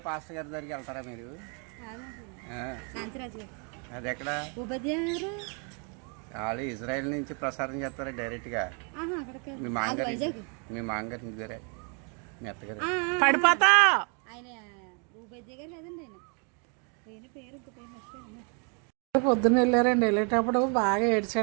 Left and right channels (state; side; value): quieter; left; 37.3 dB